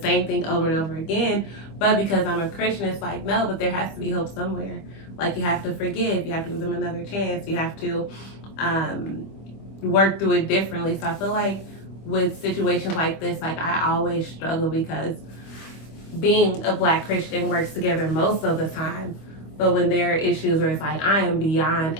same thing over and over again. But because I'm a Christian, it's like, no, but there has to be hope somewhere. Like, you have to forgive. You have to give them another chance. You have to work through it differently. So I feel like with situations like this, like, I always struggle because being a Black Christian works together most of the time. But when there are issues where it's like, I am beyond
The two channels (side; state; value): right; late; 25 ms